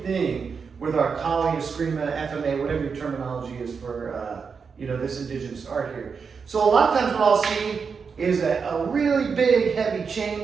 thing with our Kali, Eskrima, FMA, whatever your terminology is for this indigenous art here. So a lot of times what I'll see is a really big, heavy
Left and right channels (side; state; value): left; quieter; 5.7 dB